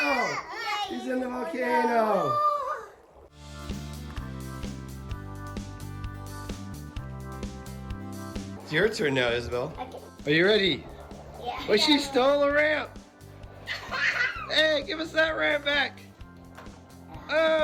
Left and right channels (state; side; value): identical; both; correlation 1.00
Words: He's in the volcano. It's your turn now, Isabel. Okay. Are you ready? Yeah. Oh, she stole a ramp. Hey, give us that ramp back.